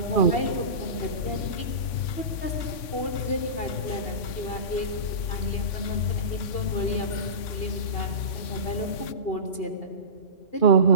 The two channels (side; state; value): right; late; 3.5 ms